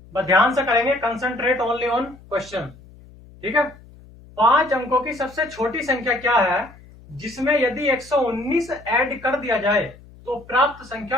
बस ध्यान से करेंगे, कंसंट्रेट ओनली ऑन क्वेश्चन। ठीक है, 5 अंकों की सबसे छोटी संख्या क्या है जिसमें यदि 119 ऐड कर दिया जाए तो प्राप्त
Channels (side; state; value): left; noise; hum, 22 dB below the sound